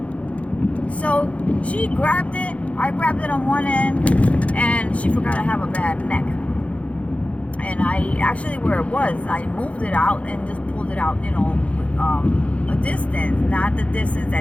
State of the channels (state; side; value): late; right; 0.064 ms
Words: So she grabbed it. I grabbed it on one end, and she forgot I have a bad neck. And I actually, where it was, I moved it out and just pulled it out, a distance, not the distance